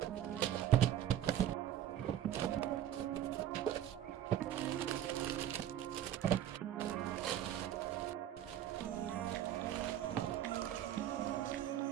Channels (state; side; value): quieter; left; 11.1 dB